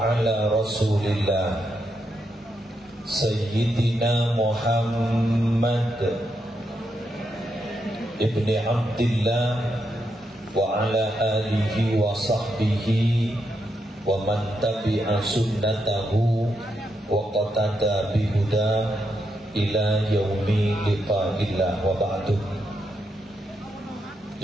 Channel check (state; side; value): normal; both; correlation 0.82